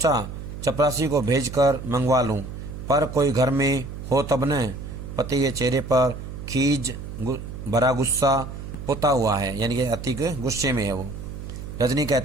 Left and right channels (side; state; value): right; noise; hum, 9 dB below the sound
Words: चपरासी को भेजकर मंगवा लूं, पर कोई घर में हो तब न। पति के चेहरे पर खीज भरा गुस्सा पुता हुआ है, यानी कि अति गुस्से में है वो। रजनी